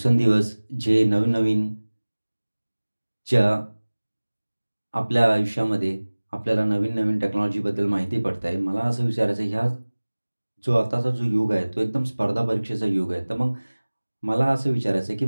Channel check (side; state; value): both; inverted; correlation -1.00